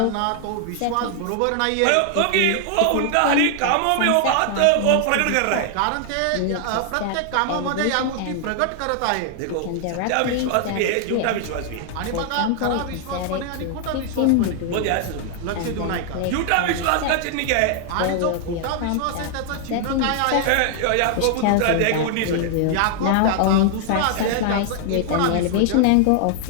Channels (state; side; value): different; both; correlation 0.00